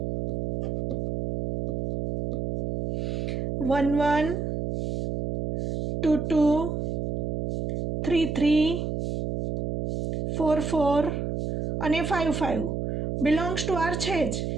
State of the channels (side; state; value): right; noise; hum, 2 dB below the sound